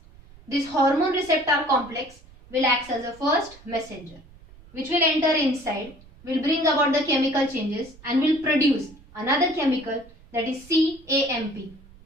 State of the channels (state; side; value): noise; right; rumble, 23 dB below the sound